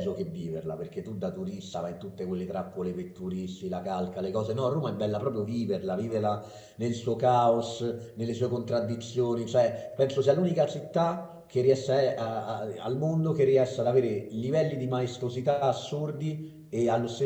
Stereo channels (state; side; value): identical; both; correlation 1.00